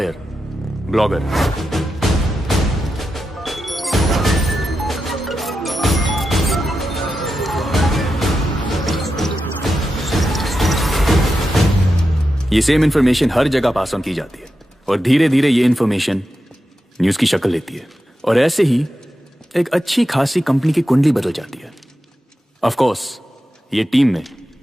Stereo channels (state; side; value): normal; both; correlation 0.89